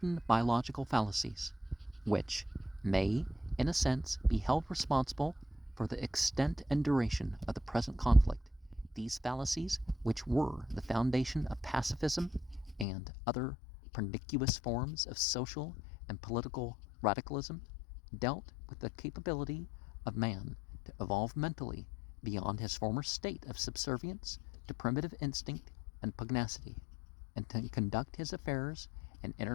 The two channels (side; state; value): right; drops out; at 12.9 s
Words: biological fallacies, which may, in a sense, be held responsible for the extent and duration of the present conflict. These fallacies, which were the foundation of pacifism and other pernicious forms of social and political radicalism, dealt with the capability of man to evolve mentally beyond his former state of subservience to primitive instinct and pugnacity, and to conduct his affairs in